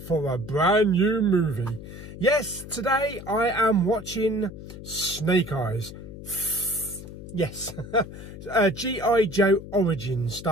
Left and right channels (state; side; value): noise; left; hum, 13 dB below the sound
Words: a brand new movie. Yes, today I am watching Snake Eyes. Yes, G.I. Joe Origins,